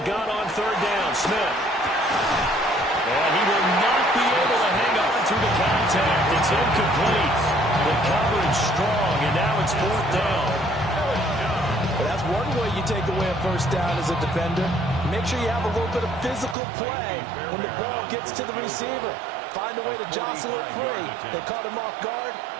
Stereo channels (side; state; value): left; drops out; at 16.6 s